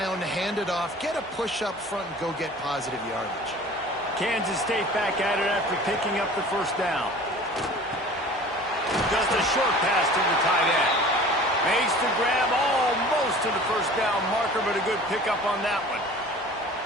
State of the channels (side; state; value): both; normal; correlation 0.44